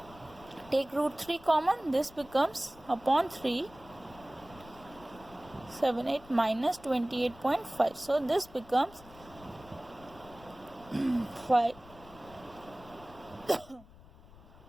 Take root 3 common, this becomes upon 3. 7, 8 minus 28.5. So this becomes 5,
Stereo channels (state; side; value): noise; left; rumble, 22 dB below the sound